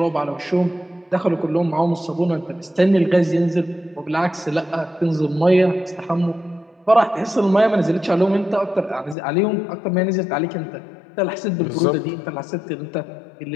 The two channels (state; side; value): drops out; right; at 9.2 s